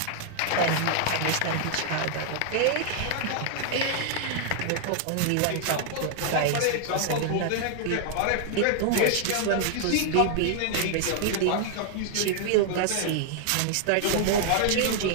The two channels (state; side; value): different; both; correlation 0.00